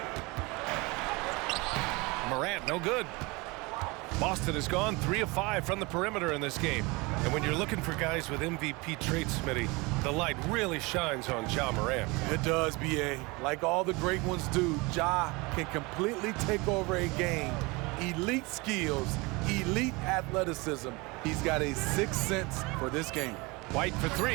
Morant, no good. Boston has gone 3 of 5 from the perimeter in this game. And when you're looking for guys with MVP traits, Smitty, the light really shines on Ja Morant. It does, B.A. Like all the great ones do, Ja can completely take over a game. Elite skills, elite athleticism. He's got a sixth sense for this game. White for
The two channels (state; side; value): quieter; left; 25.4 dB